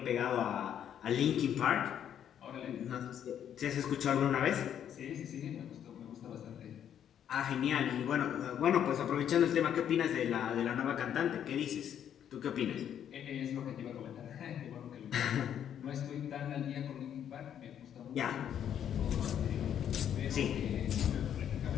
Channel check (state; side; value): quieter; right; 9.5 dB